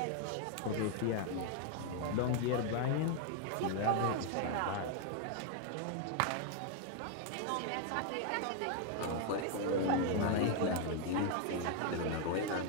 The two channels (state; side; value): different; both; correlation 0.00